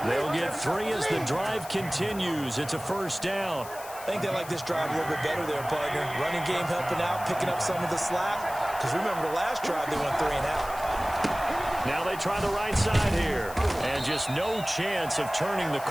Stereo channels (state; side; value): noise; left; hiss, 15 dB below the sound